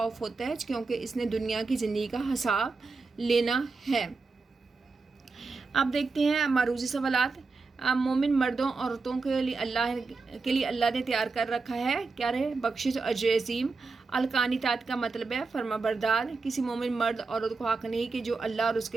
ہوتا ہے کیونکہ اس نے دنیا کی زندگی کا حساب لینا ہے. اب دیکھتے ہیں معروضی سوالات. مومن مردوں عورتوں کے لیے اللہ نے تیار کر رکھا ہے کیا رہے؟ بخشش اور اجر عظیم. القانتات کا مطلب ہے فرما بردار. کسی مومن مرد عورت کو حق نہیں کہ جو اللہ اور اس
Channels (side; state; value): left; quieter; 4.2 dB